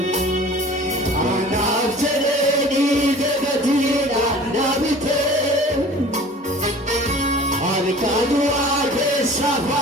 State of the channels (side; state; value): both; normal; correlation 0.45